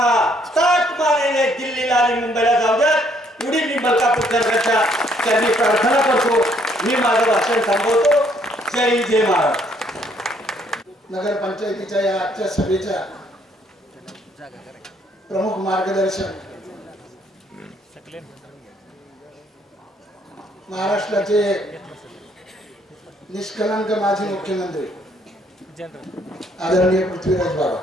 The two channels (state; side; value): normal; both; correlation 0.67